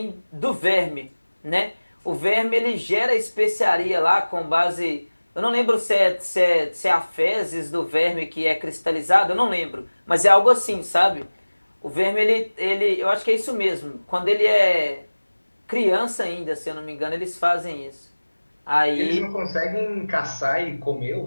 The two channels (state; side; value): inverted; both; correlation -1.00